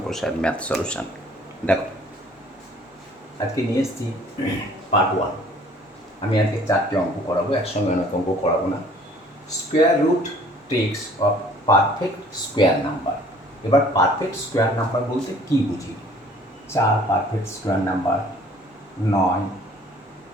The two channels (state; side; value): normal; both; correlation 0.54